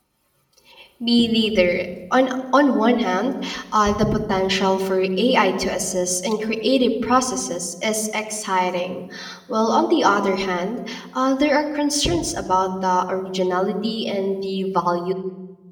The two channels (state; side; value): identical; both; correlation 1.00